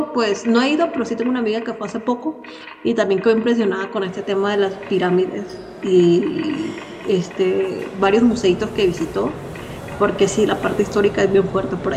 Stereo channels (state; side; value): identical; both; correlation 1.00